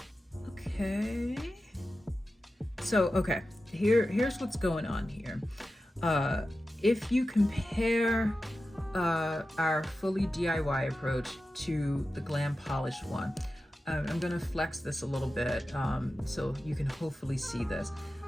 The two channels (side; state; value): both; normal; correlation 0.93